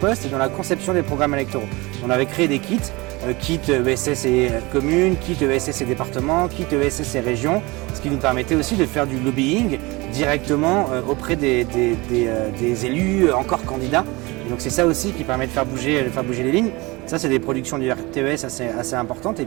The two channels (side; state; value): left; quieter; 23.7 dB